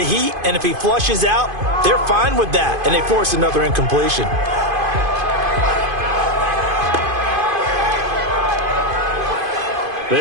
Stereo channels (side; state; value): left; late; 2.5 ms